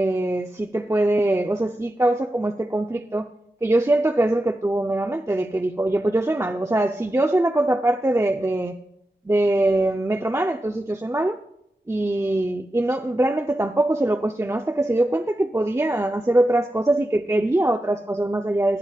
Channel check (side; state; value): both; normal; correlation 0.90